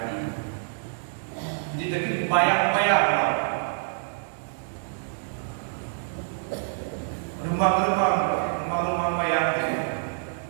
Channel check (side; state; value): left; silent; digital silence